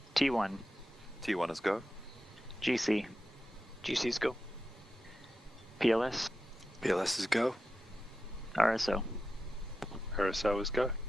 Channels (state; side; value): normal; both; correlation 0.91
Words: T1, T1 is go. GC, GC is go. PLS, PLS is go. RSO, RSO is go.